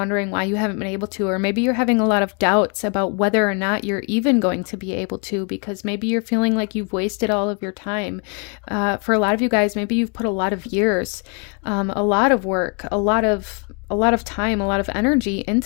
why you haven't been able to, or maybe you're having a lot of doubts about whether or not you're even going to be able to, because maybe you're feeling like you've wasted all of your time. For a lot of you guys, maybe you've put a lot of years, a lot of work, a lot of time, a lot of energy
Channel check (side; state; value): right; quieter; 35.8 dB